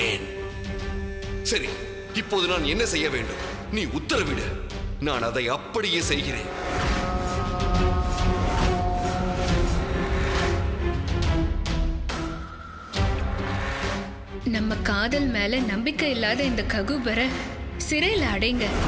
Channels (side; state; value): both; identical; correlation 1.00